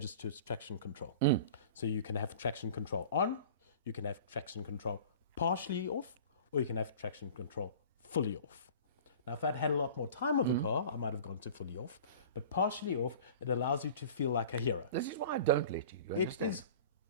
to its traction control. So you can have traction control on, you can have traction control partially off, or you can have traction control fully off. Now, if I'd had a lot more time with the car, I might have gone to fully off. But partially off, it allows you to feel like a hero. This is why I don't let you. It is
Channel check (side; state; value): both; inverted; correlation -0.42